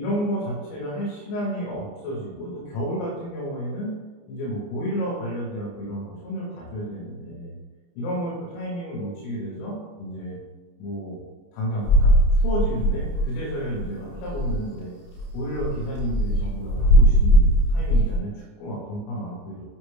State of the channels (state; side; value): late; right; 29 ms